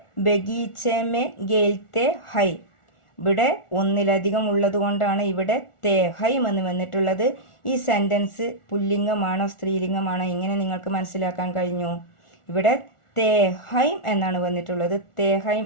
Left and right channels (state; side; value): late; right; 1.4 ms